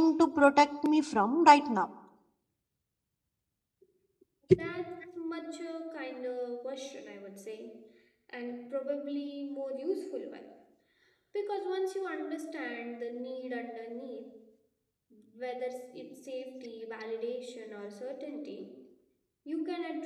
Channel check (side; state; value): both; identical; correlation 1.00